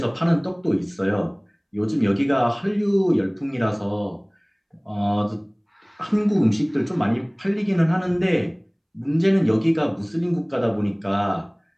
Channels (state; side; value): identical; both; correlation 1.00